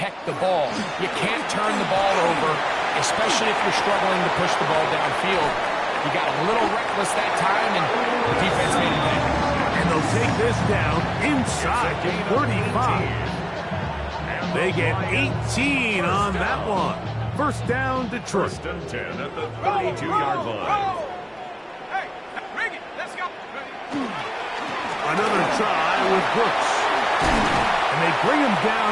the ball. You can't turn the ball over, especially if you're struggling to push the ball downfield. He got a little reckless that time, and the defense made it back. And they'll take this down inside the 35. They get 18 on that one. 1st down, Detroit. 1st and 10 at the 32-yard line. Hey, bring it. Let's go. Another try with Brooks. And they bring him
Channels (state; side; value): identical; both; correlation 1.00